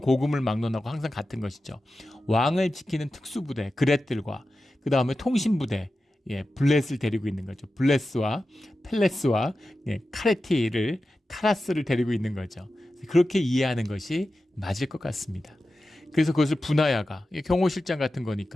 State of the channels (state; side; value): normal; both; correlation 0.93